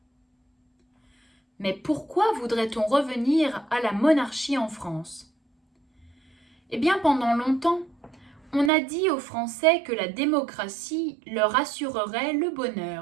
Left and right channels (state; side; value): drops out; left; at 8.7 s